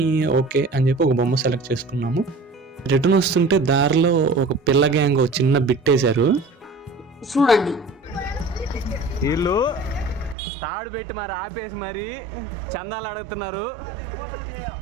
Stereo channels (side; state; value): left; drops out; at 10.4 s